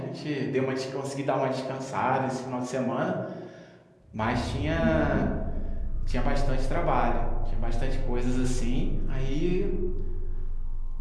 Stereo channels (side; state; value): both; identical; correlation 1.00